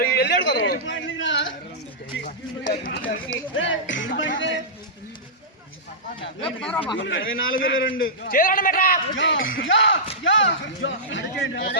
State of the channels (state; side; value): normal; both; correlation -0.15